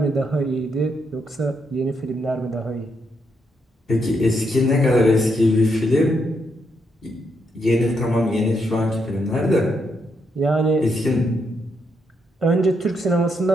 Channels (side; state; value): both; normal; correlation 0.79